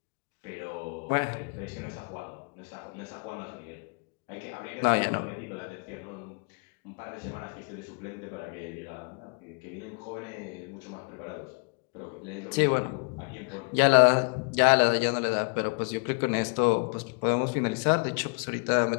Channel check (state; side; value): quieter; right; 34.6 dB